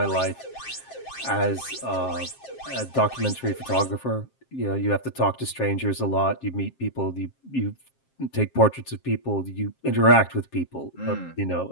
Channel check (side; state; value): right; late; 7.5 ms